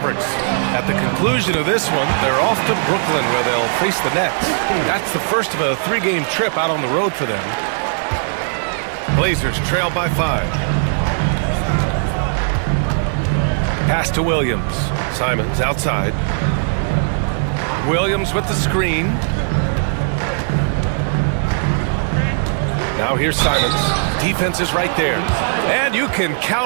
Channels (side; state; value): left; silent; 62 dB below the other